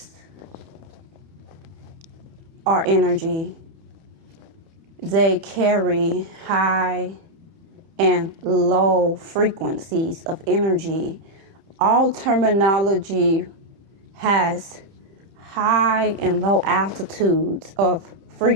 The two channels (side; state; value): left; late; 30 ms